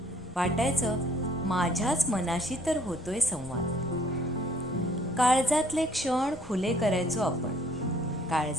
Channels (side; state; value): both; normal; correlation 0.60